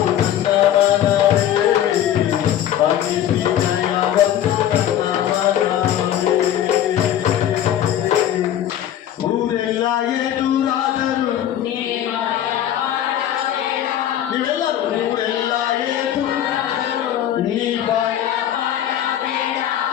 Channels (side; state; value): right; quieter; 11.1 dB